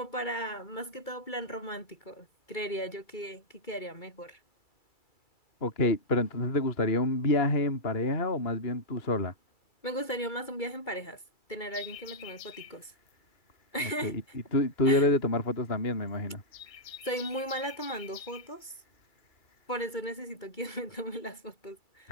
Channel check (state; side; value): late; right; 2.2 ms